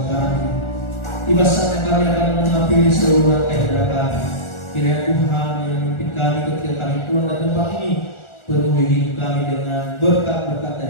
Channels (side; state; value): right; late; 1.4 ms